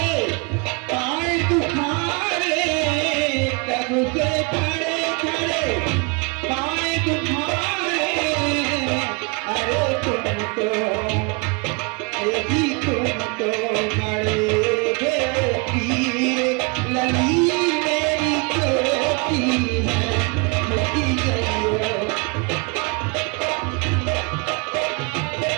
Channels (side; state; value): left; quieter; 31.6 dB